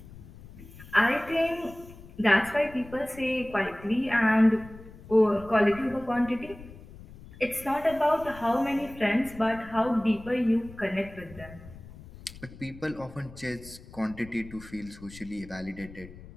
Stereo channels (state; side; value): noise; left; rumble, 18 dB below the sound